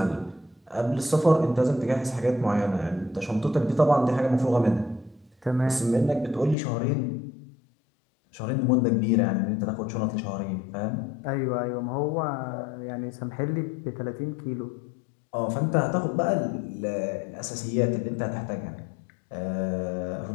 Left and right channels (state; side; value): drops out; right; at 6.6 s